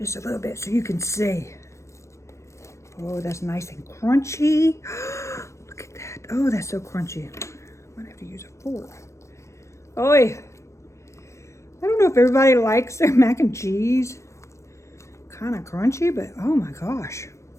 a little bit so you can see. Oh, that's nice and crunchy. Look at that. Oh, that's so crunchy. I'm gonna have to use a fork. Oi. I don't know if everybody likes their mac and cheese. Kind of crunchy, but oh my gosh.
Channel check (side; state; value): right; late; 0.14 ms